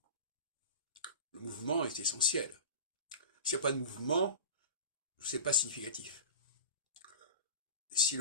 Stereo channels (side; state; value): both; inverted; correlation -0.32